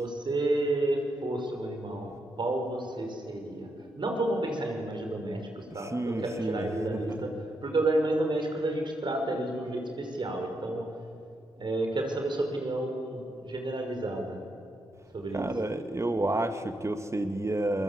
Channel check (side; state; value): both; normal; correlation 0.81